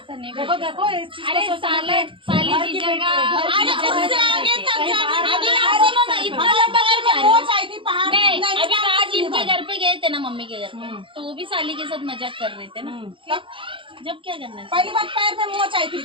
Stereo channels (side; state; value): left; late; 0.25 ms